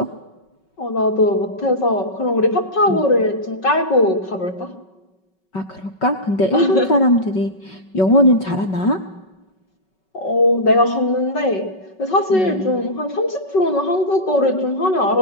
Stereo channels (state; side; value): late; right; 5.3 ms